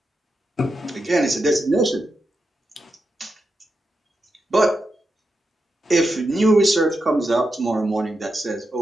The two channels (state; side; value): normal; both; correlation 0.87